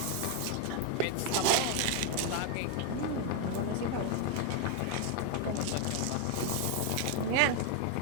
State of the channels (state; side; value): different; both; correlation 0.01